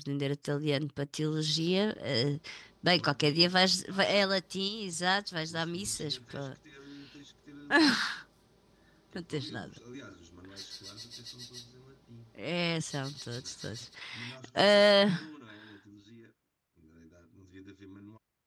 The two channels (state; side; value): identical; both; correlation 1.00